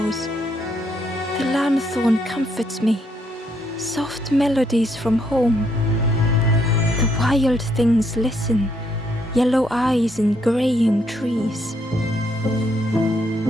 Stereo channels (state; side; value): normal; both; correlation 0.73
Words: The lanthorn comforts me. Soft melodies from home. The wild things listen. Yellow eyes in greying trees.